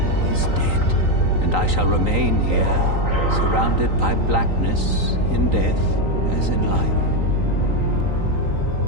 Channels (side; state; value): left; late; 3.9 ms